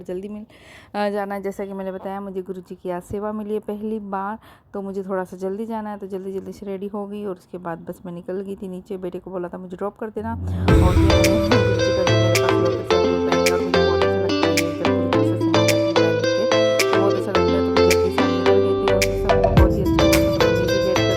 जल्दी मिल जाना है। जैसा कि मैंने बताया मुझे गुरु जी की आज सेवा मिली है पहली बार, तो मुझे थोड़ा सा जल्दी जाना है, तो जल्दी जल्दी से रेडी हो गई और उसके बाद बस मैं निकल गई थी नीचे। बेटे को बोला था मुझे ड्रॉप कर देना और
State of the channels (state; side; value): identical; both; correlation 1.00